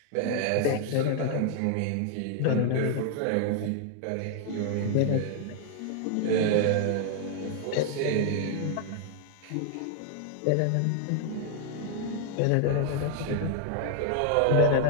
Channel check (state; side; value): different; both; correlation 0.00